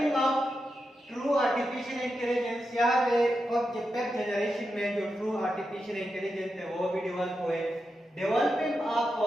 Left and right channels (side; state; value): both; normal; correlation 0.88